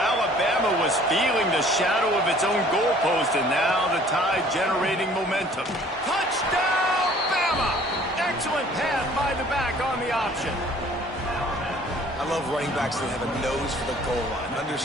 was feeling the shadow of its own goalpost, and now the Tide generating momentum. Touchdown, Bama! Excellent pass by the back on the option. I love running backs that have a nose for the goal line.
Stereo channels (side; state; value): both; normal; correlation 0.54